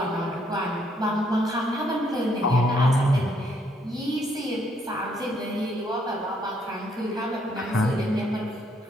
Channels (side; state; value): both; normal; correlation 0.71